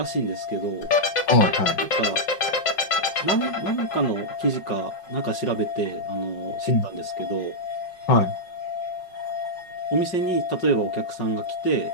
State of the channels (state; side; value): late; right; 5.5 ms